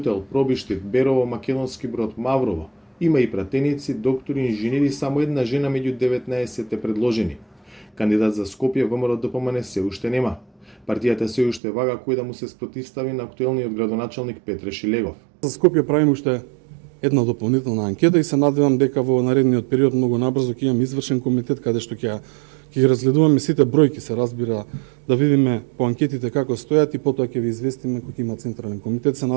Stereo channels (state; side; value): drops out; left; at 11.6 s